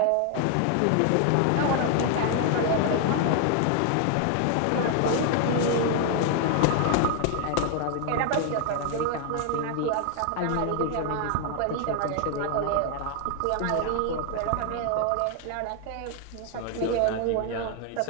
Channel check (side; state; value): both; different; correlation 0.00